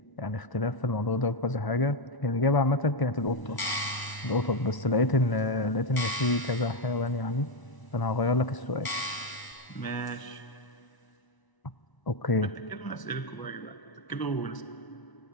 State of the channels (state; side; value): late; right; 1.0 ms